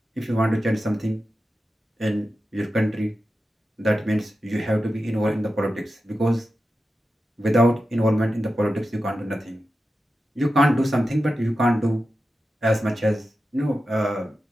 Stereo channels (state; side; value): normal; both; correlation 0.92